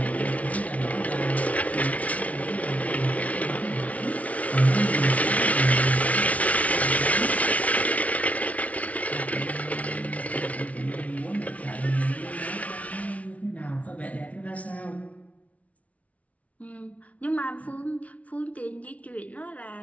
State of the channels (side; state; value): right; late; 0.067 ms